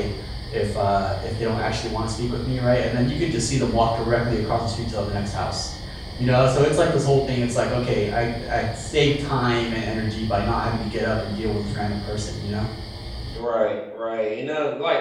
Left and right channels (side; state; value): both; identical; correlation 1.00